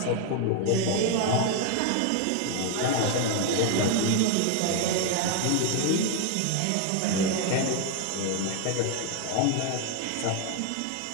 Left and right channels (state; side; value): different; both; correlation 0.01